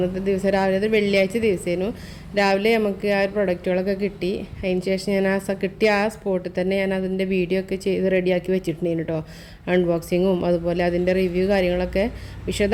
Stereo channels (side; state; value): both; identical; correlation 1.00